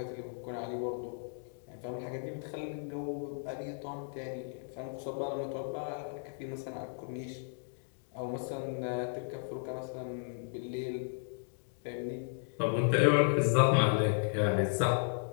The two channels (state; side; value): silent; right; digital silence